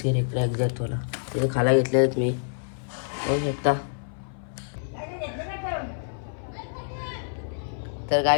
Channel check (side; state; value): right; silent; 57 dB below the other